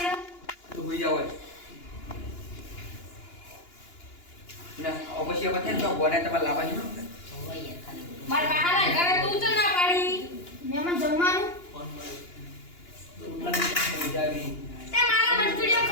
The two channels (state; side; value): late; right; 2.9 ms